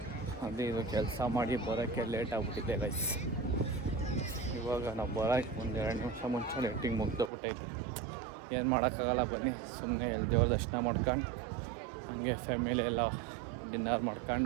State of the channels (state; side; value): drops out; left; at 7.3 s